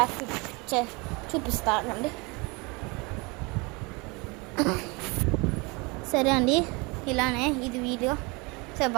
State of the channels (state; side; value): quieter; left; 27.7 dB